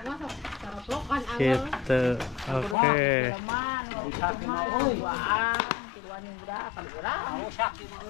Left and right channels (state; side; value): drops out; right; at 2.8 s